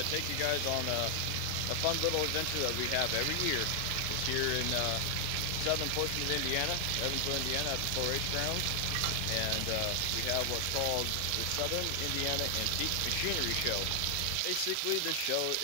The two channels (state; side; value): different; both; correlation 0.00